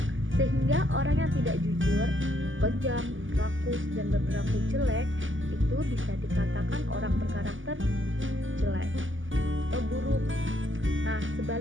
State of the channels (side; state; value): left; late; 0.57 ms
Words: sehingga orang yang tidak jujur, kejam, rakus, dan berperilaku jelek itu bisa dikatakan orang berkarakter jelek atau buruk. Nah,